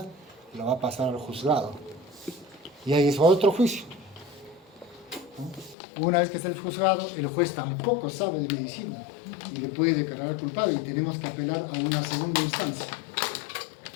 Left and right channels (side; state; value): right; drops out; at 5.8 s